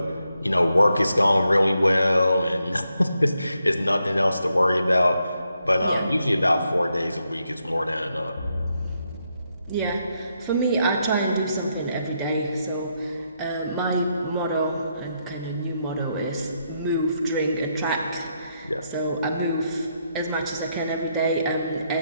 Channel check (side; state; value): both; inverted; correlation -0.80